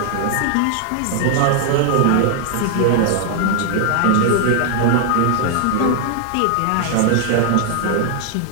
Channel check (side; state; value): both; different; correlation 0.00